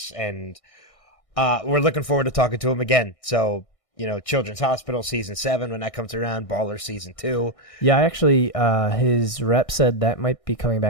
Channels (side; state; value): right; late; 1.6 ms